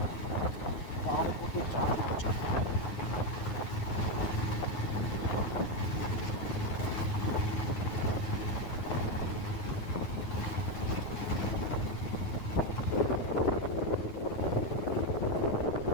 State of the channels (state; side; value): late; right; 9.4 ms